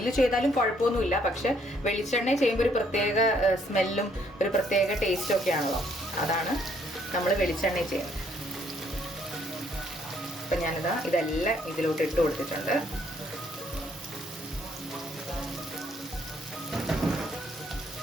ചെയ്താലും കുഴപ്പമൊന്നുമില്ല, പക്ഷെ വെളിച്ചെണ്ണ ചെയ്യുമ്പോൾ ഒരു പ്രത്യേക സ്മെല്ലും ഒരു പ്രത്യേക ടേസ്റ്റും ഒക്കെ ആണല്ലോ, അതാണ് നമ്മൾ വെളിച്ചെണ്ണ ചെയ്യുന്നത്. അപ്പം ഞാനിതാ ഇതെല്ലാം ഇതിലോട്ട് ഇട്ട് കൊടുത്തിട്ടുണ്ട്.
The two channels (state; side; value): normal; both; correlation 0.68